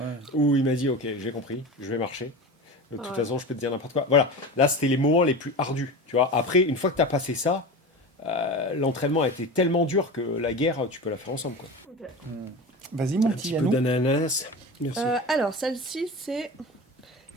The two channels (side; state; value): both; normal; correlation 0.29